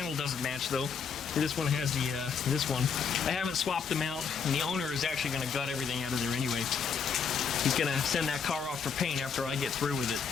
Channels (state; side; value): quieter; right; 6.4 dB